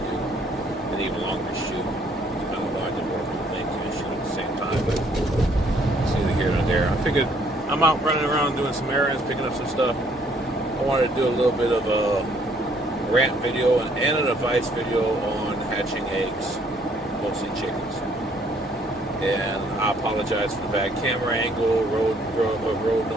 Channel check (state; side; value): normal; both; correlation 0.64